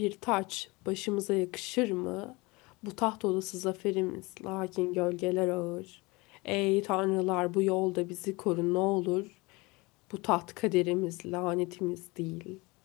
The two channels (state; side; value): quieter; right; 24.4 dB